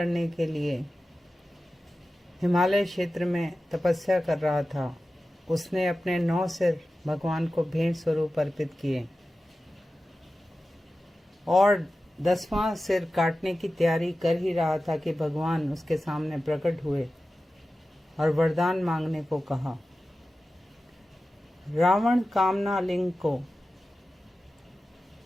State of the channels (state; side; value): normal; both; correlation 0.94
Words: के लिए हिमालय क्षेत्र में तपस्या कर रहा था। उसने अपने 9 सिर भगवान को भेंट स्वरूप अर्पित किए और 10वां सिर काटने की तैयारी कर ही रहा था कि भगवान उसके सामने प्रकट हुए और वरदान मांगने को कहा। रावण कामना लिंग को,